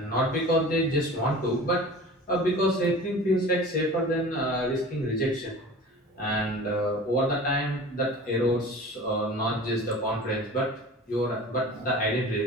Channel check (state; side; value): normal; both; correlation 0.39